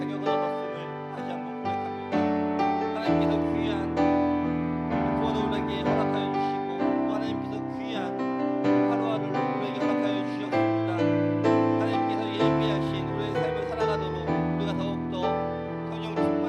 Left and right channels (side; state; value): both; identical; correlation 1.00